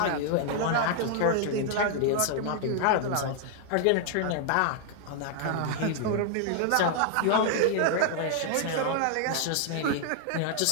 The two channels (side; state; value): both; different; correlation 0.00